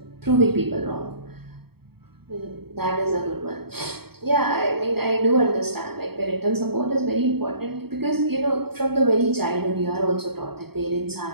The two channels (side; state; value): left; late; 0.96 ms